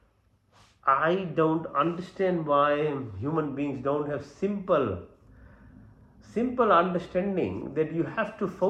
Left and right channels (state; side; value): identical; both; correlation 1.00